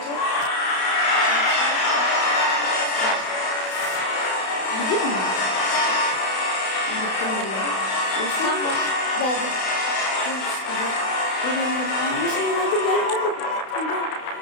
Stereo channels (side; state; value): right; late; 32 ms